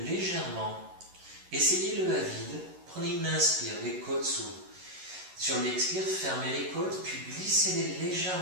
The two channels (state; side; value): late; left; 11 ms